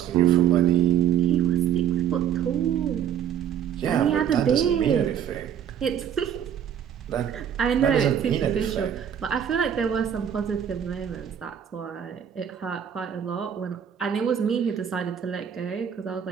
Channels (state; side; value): quieter; left; 9.1 dB